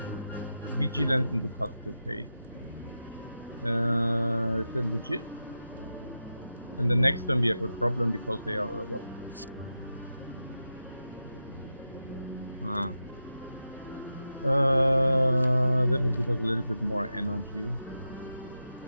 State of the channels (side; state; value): both; inverted; correlation -0.89